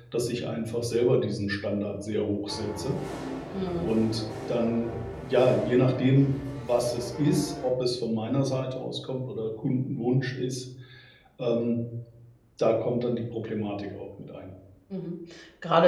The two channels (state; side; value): identical; both; correlation 1.00